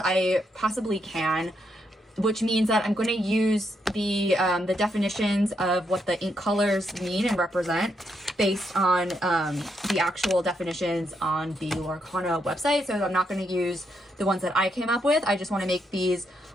possibly can, which means that I'm going to use the definitions of what the ink colors mean and represent based on the actual definitions on the Lorcana website. So I'm not going to use the ones that I came up with. I just want to make these,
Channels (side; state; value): both; normal; correlation 0.79